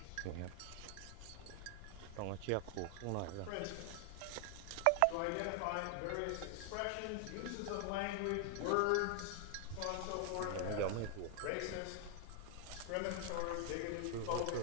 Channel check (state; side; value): different; both; correlation 0.00